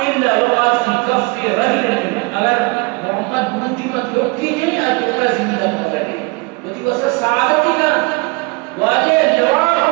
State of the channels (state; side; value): quieter; left; 28.2 dB